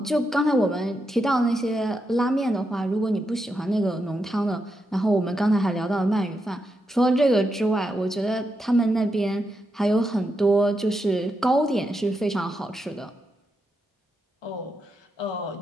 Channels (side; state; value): both; normal; correlation 0.84